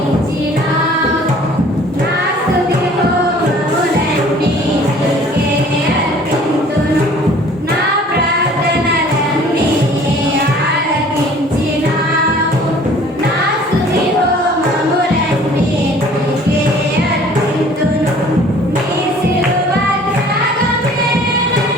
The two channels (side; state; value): both; normal; correlation 0.51